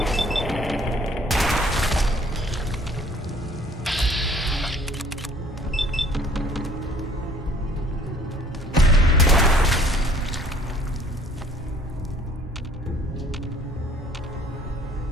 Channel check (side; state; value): both; normal; correlation 0.56